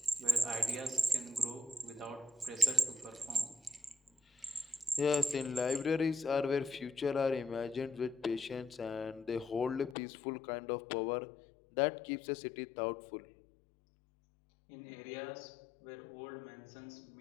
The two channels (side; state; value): right; drops out; at 10.0 s